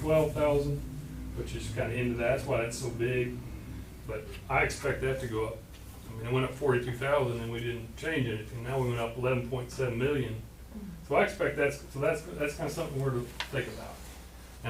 which is kind of into that. That's why that's so big. But I expect that to go up. I mean, it went up 42,000 and we didn't change anything. Now we went up 11.7 million. So I expect that's kind of something we're to think about.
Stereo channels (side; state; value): both; identical; correlation 1.00